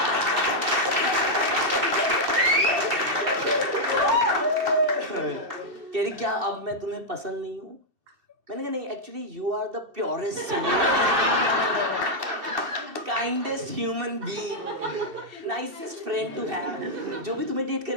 कह रही क्या अब मैं तुम्हें पसंद नहीं हूं? मैंने कहा नहीं, actually you are the purest kindest human being, nicest friend to have. जो भी तुम्हें डेट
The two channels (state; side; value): late; left; 2.7 ms